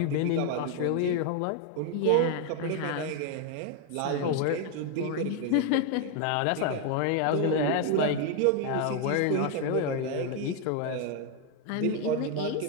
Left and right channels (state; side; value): different; both; correlation 0.01